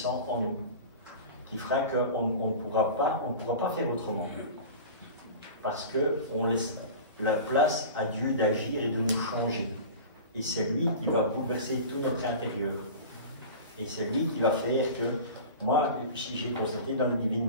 en nous, qui fera qu'on ne pourra pas faire autrement. Parce qu'on laisse la place à Dieu d'agir et de nous changer. Et c'est lui qui va bouleverser tout notre intérieur. Et c'est lui qui va faire que, moi, si j'ai constaté dans la divine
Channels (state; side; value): inverted; both; correlation -0.34